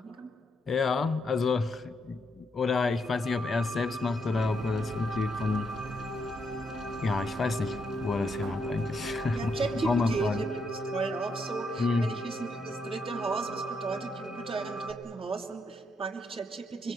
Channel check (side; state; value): both; normal; correlation 0.78